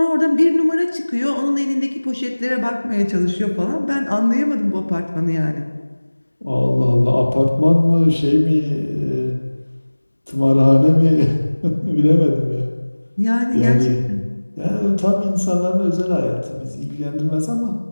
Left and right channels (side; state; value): both; inverted; correlation -1.00